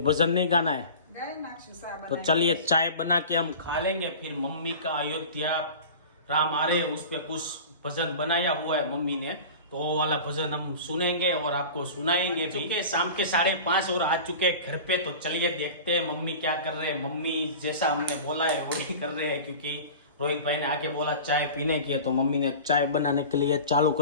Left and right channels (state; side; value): inverted; both; correlation -0.36